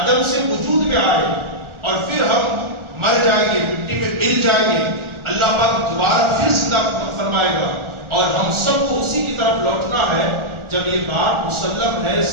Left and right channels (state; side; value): late; left; 1.4 ms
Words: سے وجود میں آئے، اور پھر ہم مر جائیں گے، مٹی میں مل جائیں گے، اللہ پاک دوبارہ پھر زندہ فرمائے گا اور ہم سب کو اسی کی طرف لوٹنا ہے۔ جب یہ بات مسلم ہے،